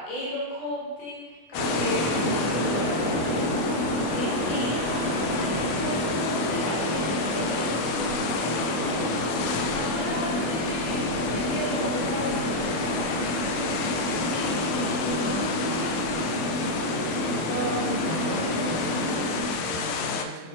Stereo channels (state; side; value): late; right; 24 ms